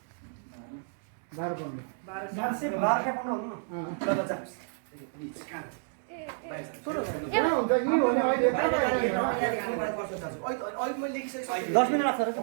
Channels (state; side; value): silent; left; digital silence